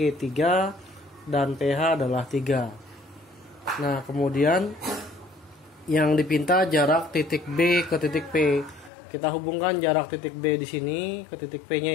3 dan PH adalah 3. Nah, kemudian yang dipinta jarak titik B ke titik P. Kita hubungkan jarak titik B di sini ke titik P-nya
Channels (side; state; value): right; drops out; at 8.9 s